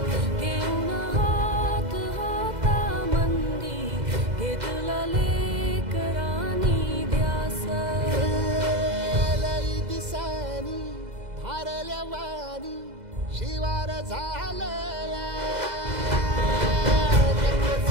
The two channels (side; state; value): left; late; 2.0 ms